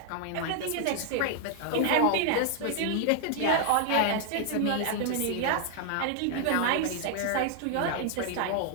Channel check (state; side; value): different; both; correlation 0.00